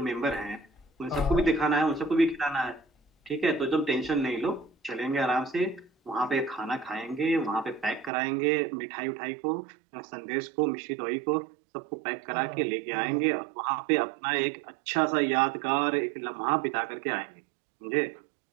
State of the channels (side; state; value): left; drops out; at 8.1 s